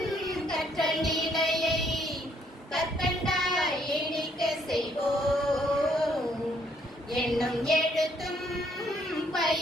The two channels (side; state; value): both; normal; correlation 0.68